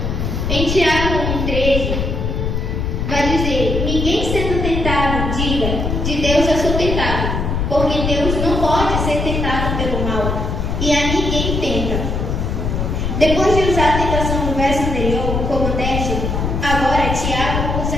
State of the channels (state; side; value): noise; left; rumble, 1 dB below the sound